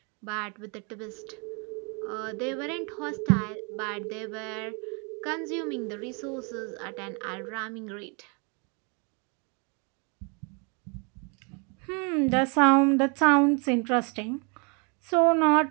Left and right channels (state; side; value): quieter; left; 34.3 dB